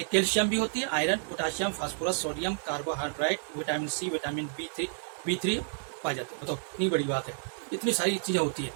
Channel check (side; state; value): left; silent; digital silence